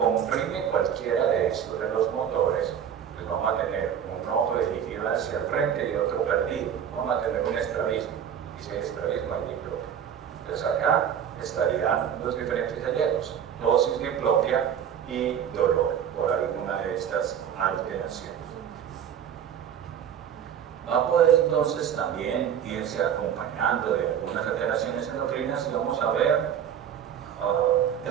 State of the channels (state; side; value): quieter; left; 8.8 dB